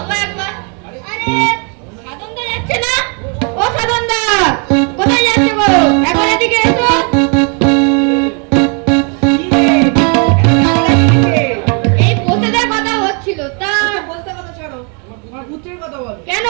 একবার। আরে সাধনদা যাচ্ছে না? ও সাধনদা, কোথায় যাচ্ছে গো? এখন এদিকে এসো। এই বসেদের কথা হচ্ছিল, তা বলতে কথা ছাড়ো, আমার পুত্রের কথা বলো। কেন,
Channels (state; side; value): quieter; left; 36.9 dB